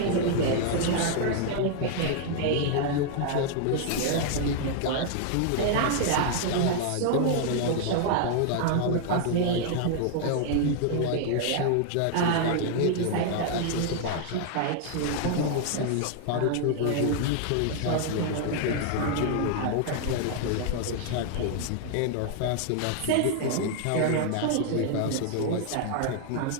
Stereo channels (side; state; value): both; different; correlation 0.00